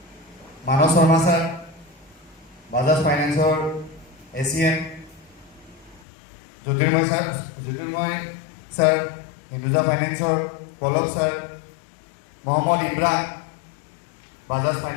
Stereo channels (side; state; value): right; drops out; at 6.0 s